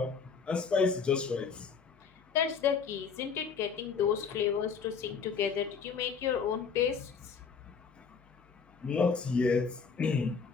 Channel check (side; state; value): right; quieter; 5.8 dB